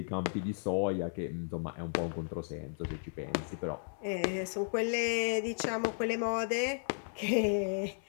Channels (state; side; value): silent; right; 55 dB below the other